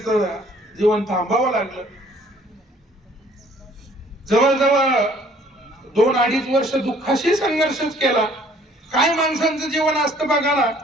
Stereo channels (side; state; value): both; normal; correlation 0.58